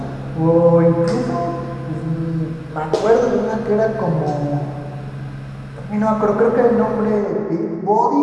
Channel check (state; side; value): identical; both; correlation 1.00